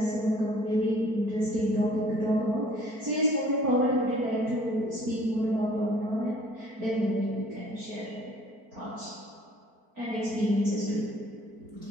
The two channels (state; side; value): late; left; 4.5 ms